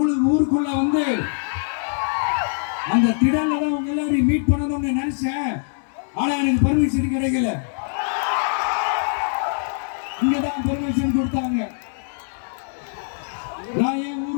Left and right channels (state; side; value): silent; right; digital silence